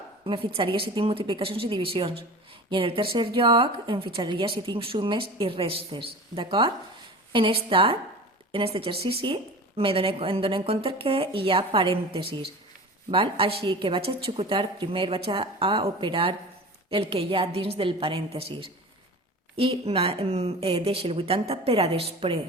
me fixaria si tinc multiplicacions i divisions. I en el tercer lloc, em fixaria si tinc sumes i restes, d'acord? En aquest exercici em dono compte que hi ha parèntesis, val? Així que vaig a executar primer, vaig a operar el que hi ha dins del parèntesis i deixo el 80 per a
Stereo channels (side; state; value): both; normal; correlation 0.35